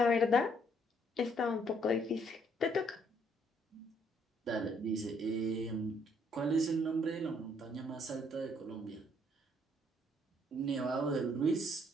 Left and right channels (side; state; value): both; normal; correlation 0.67